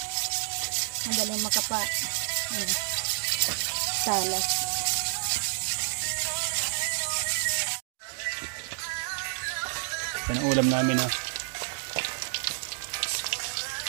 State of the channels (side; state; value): left; silent; digital silence